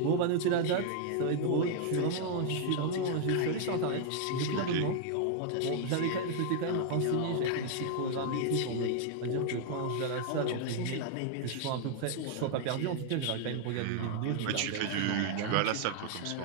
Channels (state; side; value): different; both; correlation 0.00